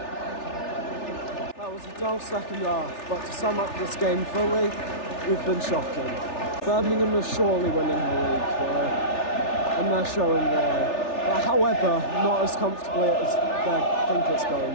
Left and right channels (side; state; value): right; late; 3.4 ms